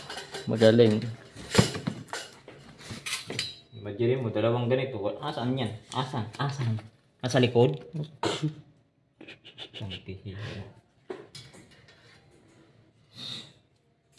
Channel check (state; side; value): identical; both; correlation 1.00